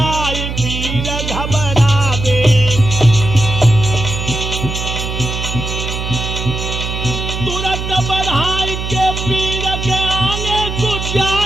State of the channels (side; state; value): right; noise; hum, 5 dB below the sound